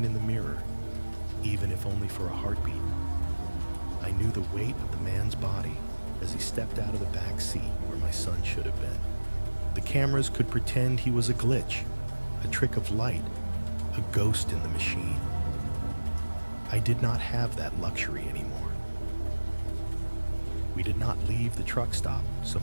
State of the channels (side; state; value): both; inverted; correlation -1.00